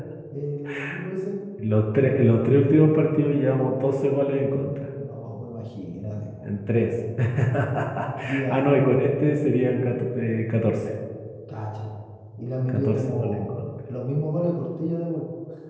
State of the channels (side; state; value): both; identical; correlation 1.00